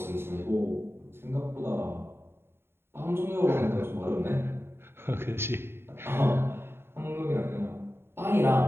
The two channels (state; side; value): late; left; 0.11 ms